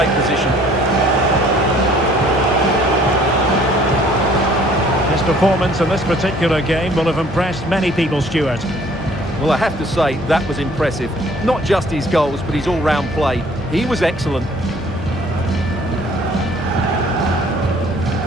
position. His performance in this particular game will have impressed many people, Stuart. Well, I have to say, that was impressive. Not just his goals, but his all-round play. He was excellent.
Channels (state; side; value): normal; both; correlation 0.56